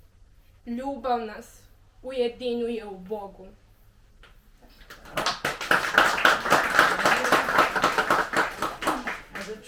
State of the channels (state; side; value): identical; both; correlation 1.00